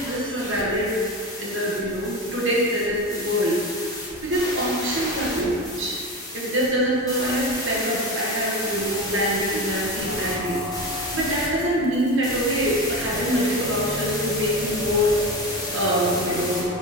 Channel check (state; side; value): normal; both; correlation 0.24